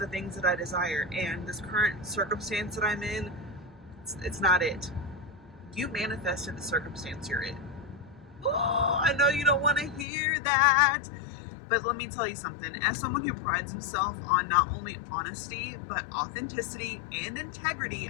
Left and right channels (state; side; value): drops out; right; at 10.1 s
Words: things that I desire. And this current circumstance that I'm in, it's not it. You manifested the circumstance you're in. Oh, I know you don't want to hear that, but let me tell you something. As someone who prides himself on not only honesty, but authenticity and integrity,